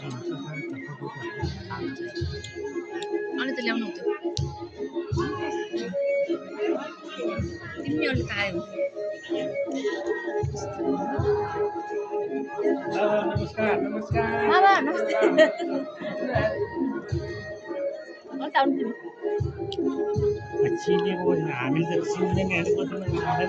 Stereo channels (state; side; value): identical; both; correlation 1.00